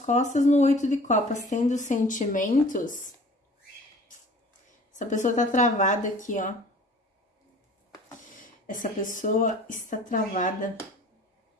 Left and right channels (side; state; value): both; normal; correlation 0.47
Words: no 8 de copas, tendo sentimentos, essa pessoa tá travada aqui, ó. Essa pessoa está travada.